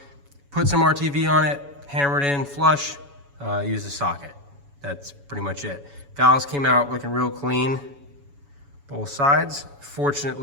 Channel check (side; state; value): left; late; 7.1 ms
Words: Put some RTV on it, hammer it in flush, use a socket. That's pretty much it. Valves came out looking real clean, both sides.